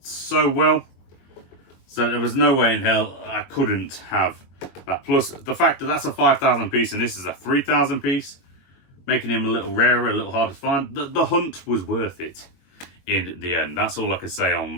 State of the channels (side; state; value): right; late; 22 ms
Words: well. So there was no way in hell I couldn't have that. Plus the fact that that's a 5,000 piece and this is a 3,000 piece, making him a little rarer, a little harder to find. The hunt was worth it in the end. That's all I can say on